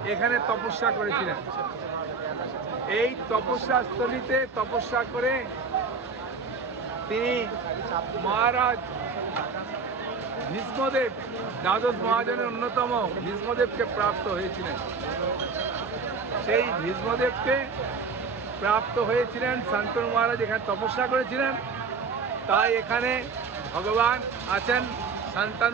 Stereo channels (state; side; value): quieter; left; 4.9 dB